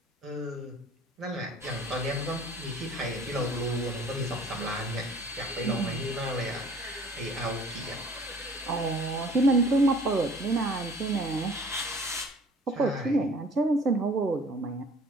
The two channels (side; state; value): both; normal; correlation 0.50